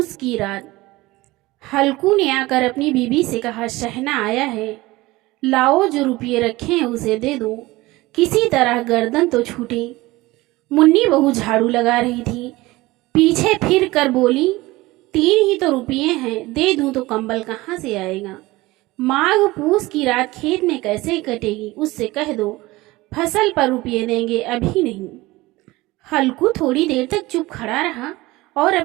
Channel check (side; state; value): left; quieter; 19.9 dB